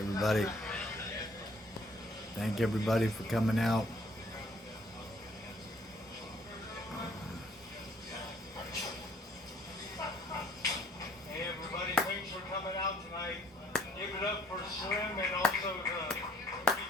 everybody. Thank everybody for coming out. Hey everybody, thanks for coming out tonight. Give it up for Slim and also the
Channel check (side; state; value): both; normal; correlation 0.61